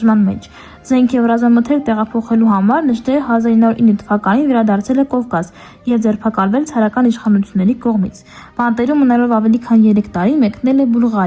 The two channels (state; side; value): identical; both; correlation 1.00